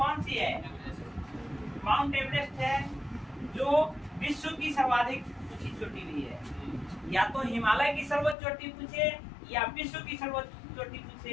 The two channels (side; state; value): right; drops out; at 8.3 s